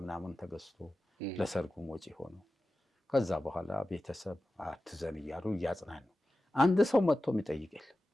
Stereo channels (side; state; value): both; normal; correlation 0.94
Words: ምናምን ተገዝቶ ለሰርጉም ወጪ ሆኖ ከዛ በኋላ ቤተሰብ አትዘን እያሉ እያጽናኑ አንድ ሰው መጥቶ የሚጠይቅ የለም።